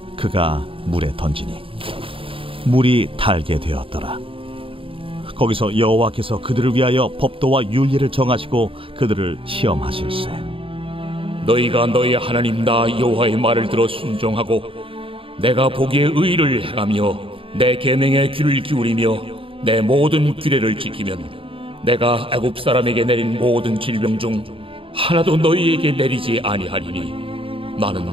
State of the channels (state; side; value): late; left; 0.26 ms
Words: 그가 물에 던지니 물이 달게 되었더라. 거기서 여호와께서 그들을 위하여 법도와 윤리를 정하시고 그들을 시험하실세. 너희가 너희 하나님 나 여호와의 말을 들어 순종하고 내가 보기에 의를 행하며 내 계명에 귀를 기울이며 내 모든 규례를 지키면 내가 애굽 사람에게 내린 모든 질병 중 하나도 너희에게 내리지 아니하리니